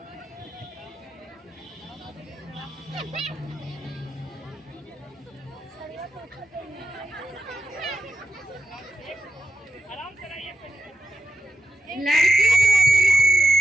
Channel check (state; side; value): normal; both; correlation 0.89